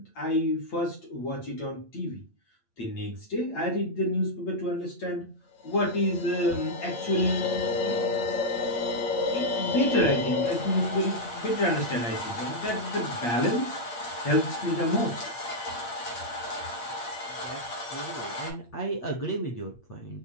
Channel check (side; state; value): right; late; 8.6 ms